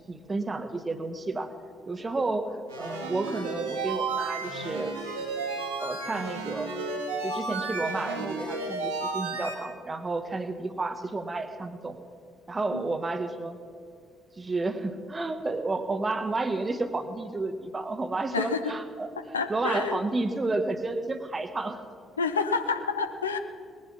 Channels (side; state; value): both; normal; correlation 0.58